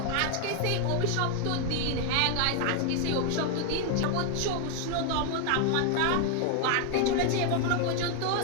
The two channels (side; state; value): both; different; correlation 0.00